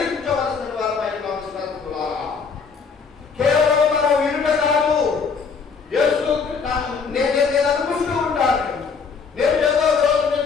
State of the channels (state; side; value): quieter; right; 5.4 dB